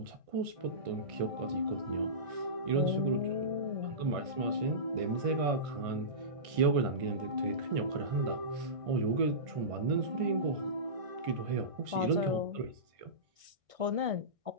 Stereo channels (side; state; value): left; late; 1.6 ms